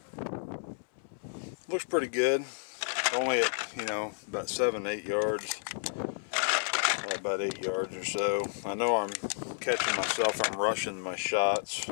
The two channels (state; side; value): silent; right; 57 dB below the other